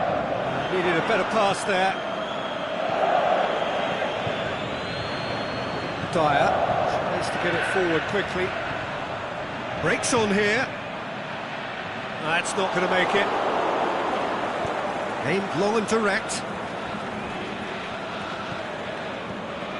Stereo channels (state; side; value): identical; both; correlation 1.00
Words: needed a better pass there. Dyer, tries to get it forward quickly, breaks on here, that's not going to make it. Aimed long and direct.